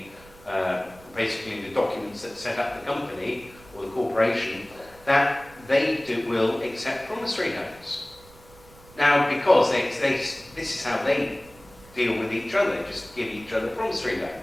basically the documents that set up the company or the corporation, that they will accept promissory notes. Now, because this is how they deal with each other, they just give each other promissory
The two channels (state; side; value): noise; right; rumble, 24 dB below the sound